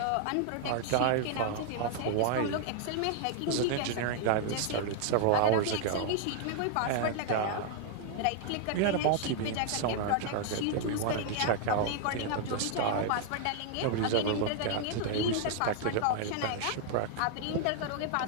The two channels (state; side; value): different; both; correlation -0.01